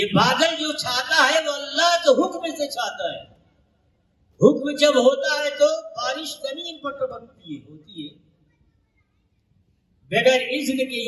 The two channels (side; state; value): both; identical; correlation 1.00